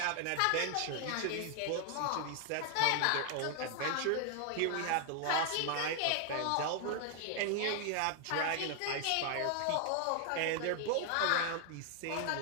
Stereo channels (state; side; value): different; both; correlation 0.00